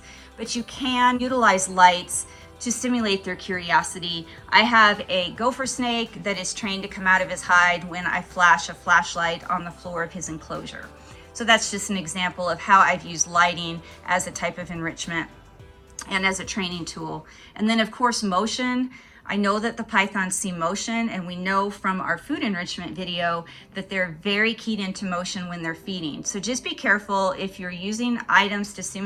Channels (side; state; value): both; identical; correlation 1.00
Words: But you can utilize lights to stimulate their curiosity. I have a gopher snake that is trained to come out of his hide when I flash a flashlight on the floor of his enclosure. So that's just an example of how I've used lighting as a type of enrichment and as a training tool. And then of course, motion. I know that the pythons see motion, and we know from our food enrichment video that they're very keyed into motion when they're feeding. So just be careful if you're using items to